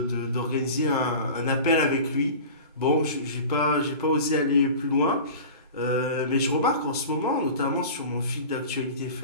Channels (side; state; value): both; inverted; correlation -0.36